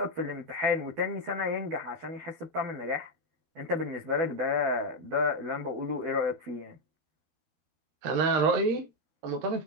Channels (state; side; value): late; left; 12 ms